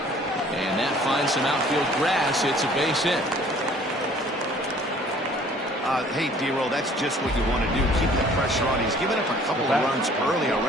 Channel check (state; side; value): normal; both; correlation 0.54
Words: And that finds some outfield grass. It's a base hit. Hey, D-Roll, that's just what you want to do. Keep the pressure on. He's given up a couple of runs early